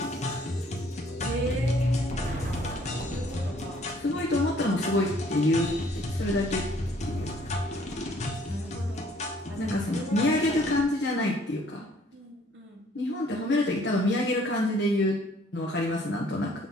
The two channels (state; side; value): normal; both; correlation 0.60